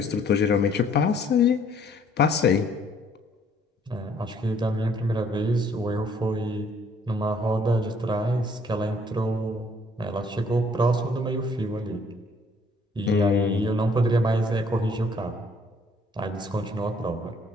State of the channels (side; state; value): both; normal; correlation 0.62